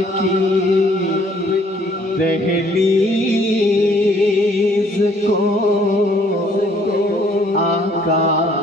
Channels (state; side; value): normal; both; correlation 0.61